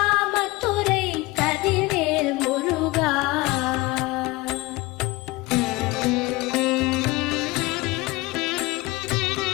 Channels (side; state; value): right; quieter; 21.6 dB